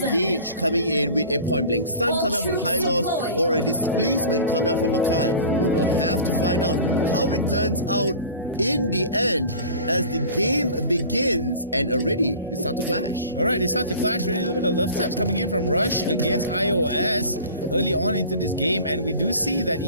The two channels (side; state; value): both; inverted; correlation -0.40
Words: coming in with a point blank stun coming up from Hylos or a displacement coming up from Akai. We will have to find out how it turns out in the end as the game begins, and already they start to clash. Alright, they start to clash. Already a little bit of love taps coming in from Rush against iOS early on into this game, and we do see that